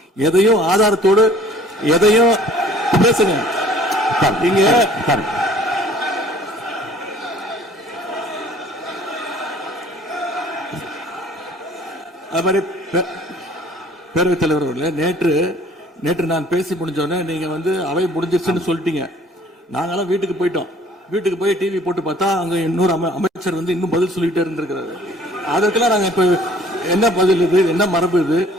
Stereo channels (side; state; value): both; normal; correlation 0.53